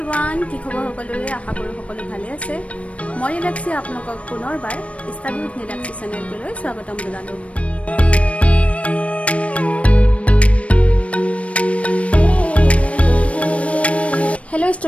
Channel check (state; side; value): late; right; 0.064 ms